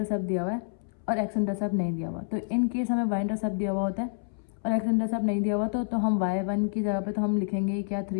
दिया हुआ है और x इंटरसेप्ट नहीं दिया हुआ, तो इन केस हमें y इंटरसेप्ट दिया हुआ होता है और x इंटरसेप्ट नहीं दिया हुआ तो हम y1 की जगह पे तो हम लिखेंगे क्या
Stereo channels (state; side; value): silent; right; 59 dB below the other